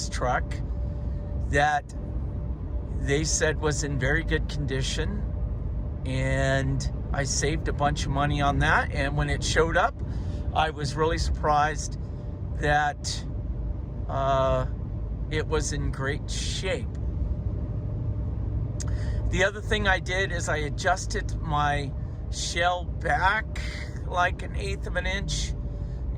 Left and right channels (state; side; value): identical; both; correlation 1.00